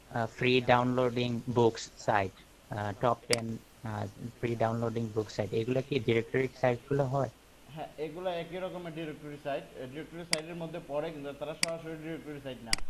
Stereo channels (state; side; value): identical; both; correlation 1.00